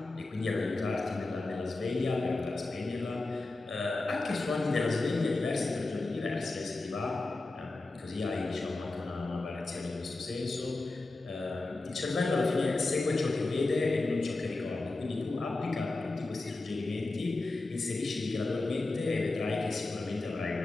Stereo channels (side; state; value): right; quieter; 3.2 dB